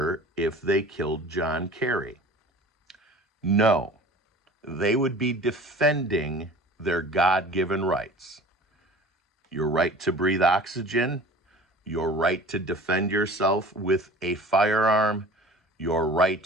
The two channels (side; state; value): both; normal; correlation 0.42